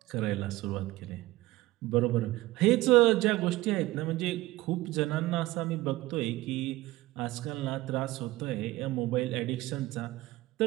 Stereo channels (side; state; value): left; quieter; 18.3 dB